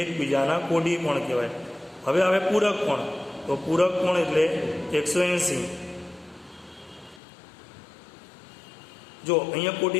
એકબીજાના કોટી કોણ કહેવાય. હવે પૂરક કોણ. તો પૂરક કોણ એટલે 180. જો અહીંયા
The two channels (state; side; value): drops out; right; at 7.2 s